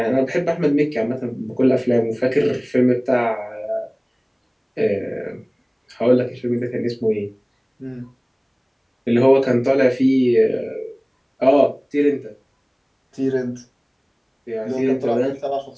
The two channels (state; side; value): identical; both; correlation 1.00